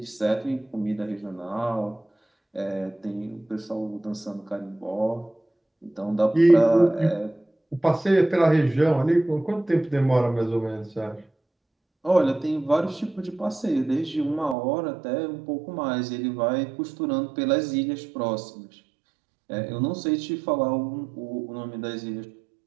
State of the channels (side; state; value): left; drops out; at 14.6 s